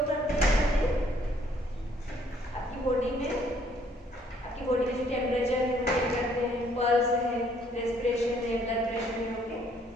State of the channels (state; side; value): normal; both; correlation 0.64